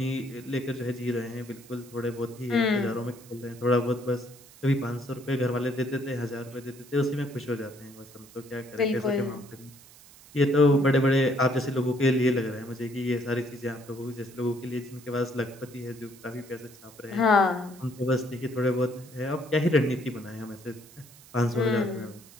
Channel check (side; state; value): right; noise; hiss, 22 dB below the sound